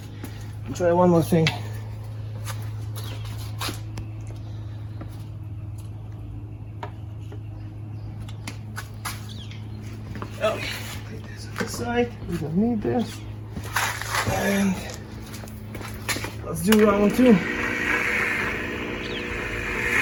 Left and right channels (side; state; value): both; identical; correlation 1.00